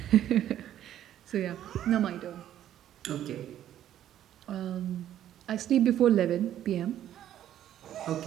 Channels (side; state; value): left; quieter; 11.5 dB